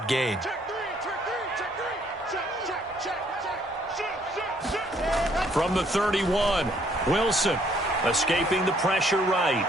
gain. From the 31, Wilson escaping the pressure right.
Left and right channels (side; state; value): both; normal; correlation 0.65